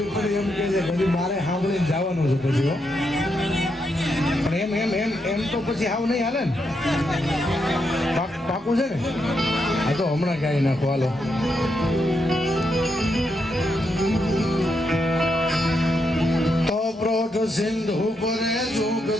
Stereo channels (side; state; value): both; normal; correlation 0.81